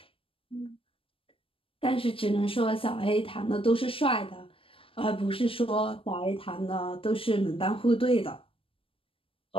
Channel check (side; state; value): right; late; 0.26 ms